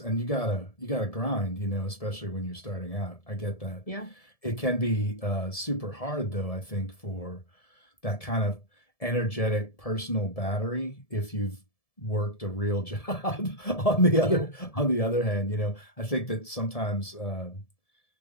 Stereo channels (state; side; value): late; right; 1.7 ms